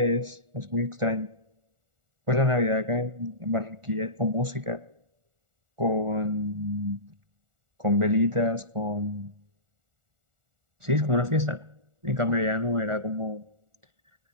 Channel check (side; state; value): left; late; 1.4 ms